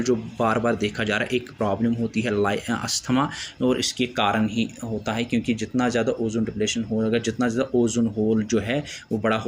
जो बार बार देखा जा रहा है, एक प्रॉब्लम होती है अस्थमा, और इसके कारण ही होता है, क्योंकि जितना ज़्यादा ओजोन डिप्लीशन होगा, जितना ज़्यादा ओजोन होल जो है वो बड़ा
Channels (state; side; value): identical; both; correlation 1.00